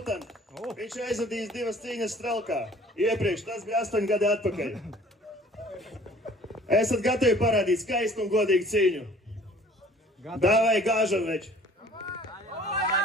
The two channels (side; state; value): both; normal; correlation 0.52